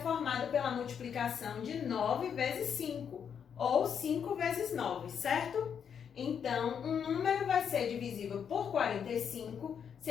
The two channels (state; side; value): quieter; right; 7.6 dB